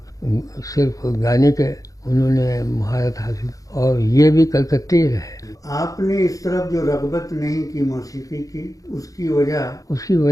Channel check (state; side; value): late; right; 0.17 ms